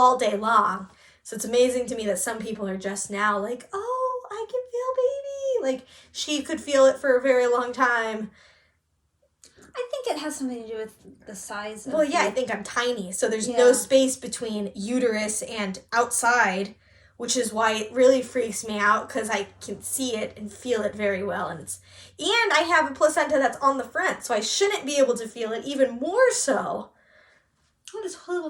day long. So it's amazing to me that some people are just now like, oh, I can feel baby. Like she could feel it for a very long time. I think it has something to do with the size of I think I'm tiny, so there's no space between uterus and outside, which is why it really freaks me out because I can see it and feel it very well, and I have a placenta that's on the front, so I shouldn't be able to feel it even more so. Oh, this whole little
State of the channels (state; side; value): identical; both; correlation 1.00